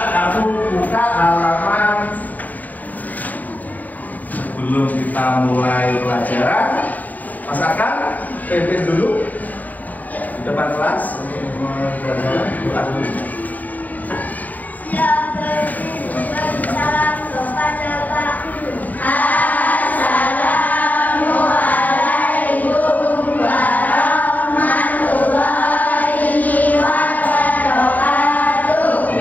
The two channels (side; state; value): right; late; 0.079 ms